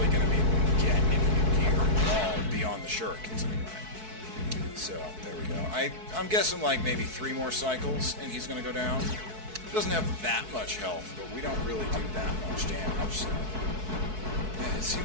going to be able to get any new gear at all beyond the shurikens anyway. So, there we go. I'm guessing like maybe 3 more cycles, and he's going to go down. He doesn't have that much health, but we don't really do that much damage, so... Yeah, it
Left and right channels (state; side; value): late; left; 4.6 ms